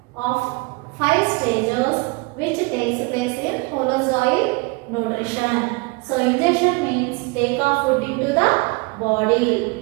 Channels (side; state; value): left; quieter; 27.9 dB